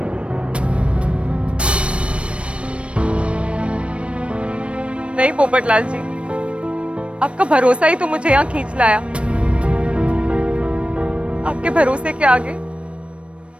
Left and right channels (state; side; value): late; left; 0.060 ms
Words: नहीं पोपटलाल जी, आपका भरोसा ही तो मुझे यहाँ खींच लाया। आपके भरोसे के आगे